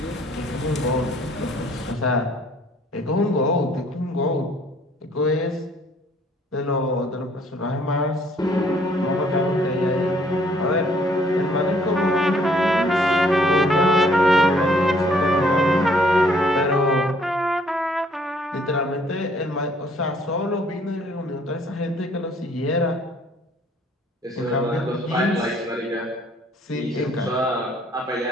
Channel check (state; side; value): normal; both; correlation 0.61